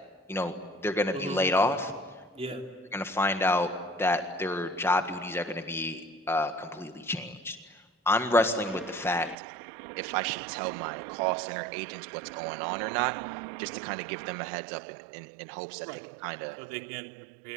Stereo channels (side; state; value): left; drops out; at 9.3 s